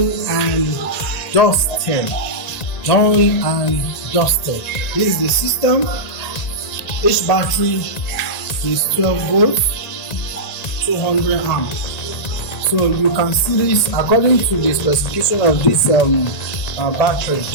and dusted. Done and dusted. This is the system. Each battery is 12 volts, 200 amps. So you can see this according to the specification of this battery.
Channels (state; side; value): late; right; 1.8 ms